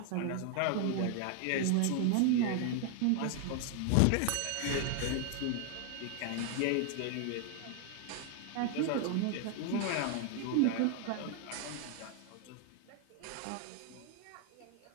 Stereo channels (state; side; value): different; both; correlation 0.00